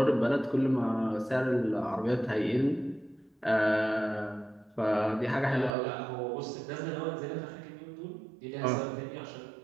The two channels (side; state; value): left; drops out; at 5.7 s